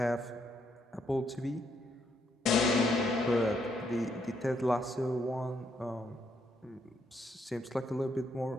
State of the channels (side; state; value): both; normal; correlation 0.75